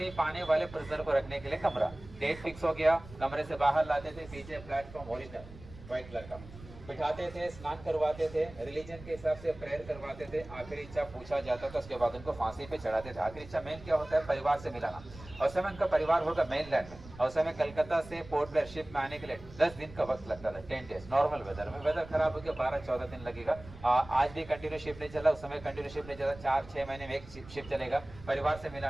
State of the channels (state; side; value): noise; right; rumble, 17 dB below the sound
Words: पाने वाले प्रिजनर को रखने के लिए कमरा। डेट फिक्स हो गया, कमरे से बाहर लाते थे, पीछे प्लेटफॉर्म ओरिजिनल व्हाइट कलर का बिठाते थे, स्नान करवाते थे, रिलीजन के हिसाब से प्रेयर करवाते थे, आखिरी इच्छा पूछा जाता था, उसके बाद उनको फांसी पे चढ़ाते थे। आखिरी इच्छा मेन क्या होता है? परिवार से मिलाना। और समय उनका परिवार होगा मेनलैंड में, और समय कलकत्ता से पोर्ट ब्लेयर शिप में आने के लिए 10 दिन का वक्त लगता था, 10 डेज नॉर्मल वेदर में। वेदर खराब हो गया 12-14 दिन लगेगा। आज भी कंटिन्यू शिप नहीं चला, उस समय कंटिन्यू शिप नहीं चला, 4-6 महीने में एक शिप चलेगा। परिवार से